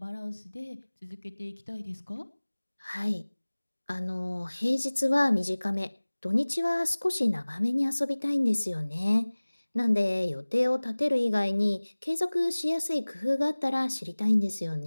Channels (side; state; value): both; inverted; correlation -1.00